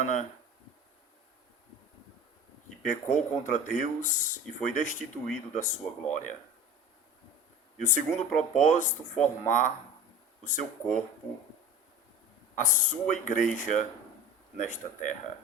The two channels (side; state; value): both; normal; correlation 0.37